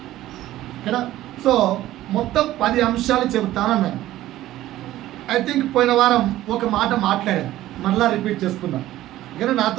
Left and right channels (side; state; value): left; quieter; 14.8 dB